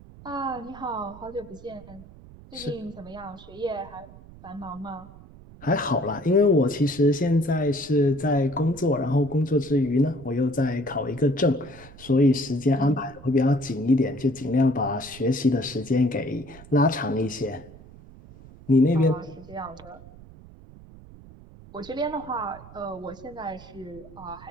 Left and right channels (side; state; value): right; noise; rumble, 20 dB below the sound